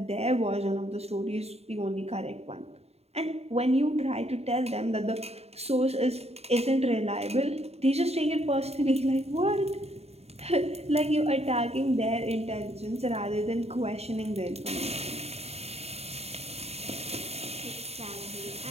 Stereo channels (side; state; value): left; late; 0.30 ms